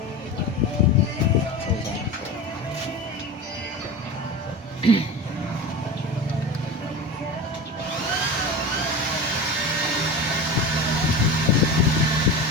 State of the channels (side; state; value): both; normal; correlation 0.29